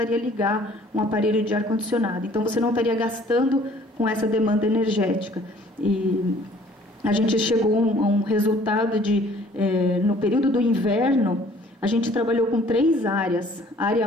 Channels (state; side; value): normal; both; correlation 0.55